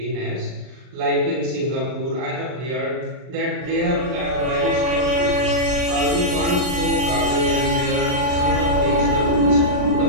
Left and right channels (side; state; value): left; late; 39 ms